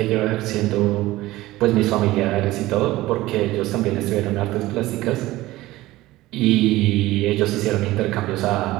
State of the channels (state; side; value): quieter; left; 17.6 dB